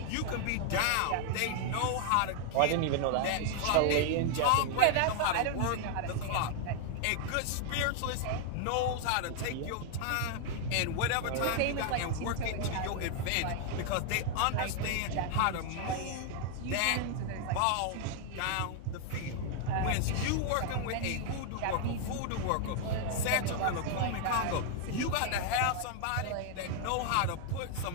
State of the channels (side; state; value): both; different; correlation 0.00